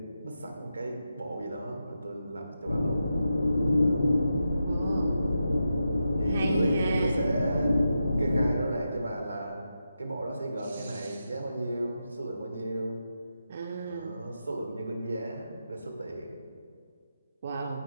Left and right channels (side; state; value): both; inverted; correlation -0.88